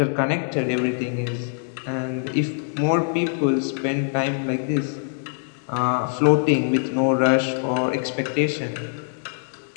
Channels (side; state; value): right; silent; digital silence